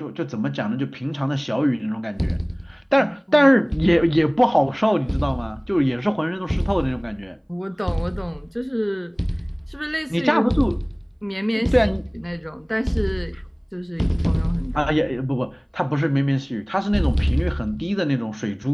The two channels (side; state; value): both; identical; correlation 1.00